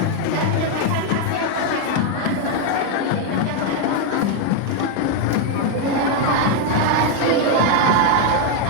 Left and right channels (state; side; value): different; both; correlation 0.01